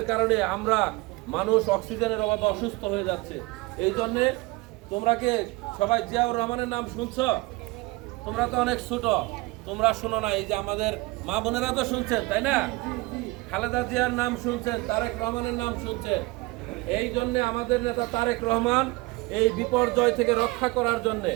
কারণে আমরা মানুষ অক্সিজেনের অভাবে অসুস্থ হয়ে যাচ্ছে। এই জন্যে তোমরা কে সবাই জিয়াউর রহমানের নাম শুনছো? তোমরা তো অনেক ছোট, তোমরা শোনো না। এই যে আমাদের মা বোনেরা তো শুনছেন, তাই না? খালেদা জিয়ার নাম শুনছেন, তারেক রহমানের নাম শুনছেন। এই জন্যে আমাদের নেতা তারেক রহমান এই বিপর্যয় থেকে রক্ষা করার জন্যে,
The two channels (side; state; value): left; quieter; 23.0 dB